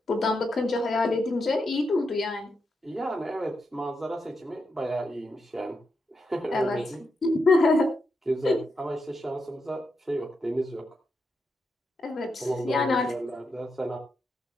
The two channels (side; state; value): both; normal; correlation 0.84